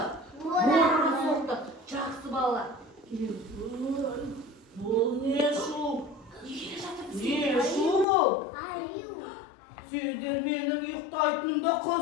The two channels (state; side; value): drops out; right; at 8.1 s